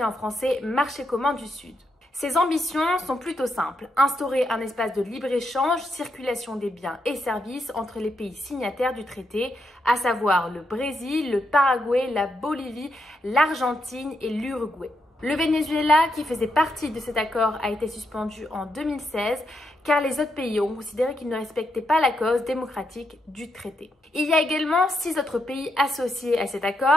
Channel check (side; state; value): both; normal; correlation 0.82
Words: en français marché commun du Sud. Ses ambitions sont plutôt simples, instaurer un espace de libre-échange, circulation des biens et services entre les pays signataires du traité, à savoir le Brésil, le Paraguay, la Bolivie, l'Argentine et l'Uruguay. Le Venezuela, qui faisait partie de cet accord, a été suspendu en 2016 car les autres pays ont considéré qu'ils ne respectaient pas la cause démocratique du traité. Il y a également 6 autres pays associés à cet